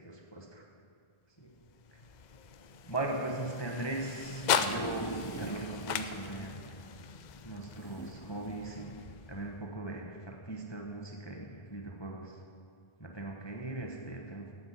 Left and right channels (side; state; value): right; late; 2.0 ms